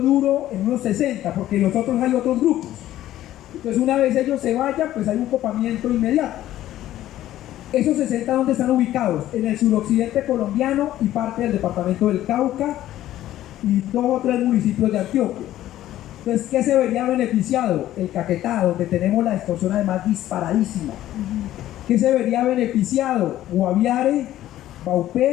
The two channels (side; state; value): right; quieter; 13.5 dB